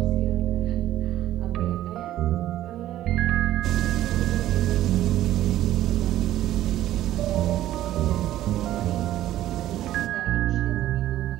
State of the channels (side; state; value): left; quieter; 13.5 dB